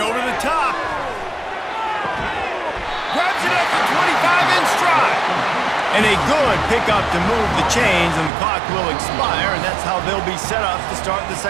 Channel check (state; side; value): drops out; left; at 8.3 s